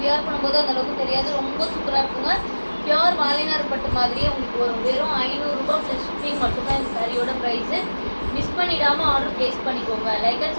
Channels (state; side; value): inverted; both; correlation -1.00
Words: வியர் பண்ணும்போது அந்த அளவுக்கு தெரியாது. ரொம்ப சூப்பராக இருக்குங்க. பியூர் வாழைநாறு பட்டு மாதிரியே உங்களுக்கு வரும். வெறும் 500 ரூபாய் + ஷிப்பிங் மட்டும்தான் இந்த சாரியோட ப்ரைஸு. மிஸ் பண்ணிடாமல் ஆர்டர் ப்ளேஸ் பண்ணிக்கோங்க. லைக் அண்ட்